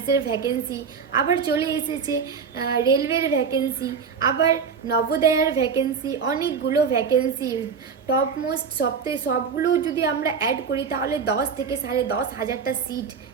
ভ্যাকেন্সি। আবার চলে এসেছে রেলওয়ের ভ্যাকেন্সি, আবার নবোদয়ার ভ্যাকেন্সি, অনেকগুলো ভ্যাকেন্সি। টপ মোস্ট সবগুলো যদি আমরা অ্যাড করি তাহলে 10 থেকে 10,500টা সিট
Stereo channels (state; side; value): quieter; left; 6.1 dB